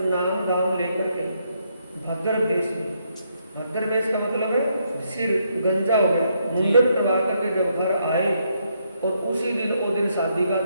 नाम दाम लेकर के भद्र वेश में, भद्र वेश का मतलब है सिर गंजा हो गया, मुंडन करवा करके जब घर आए, और उसी दिन वो दिन शादी का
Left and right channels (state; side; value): inverted; both; correlation -0.75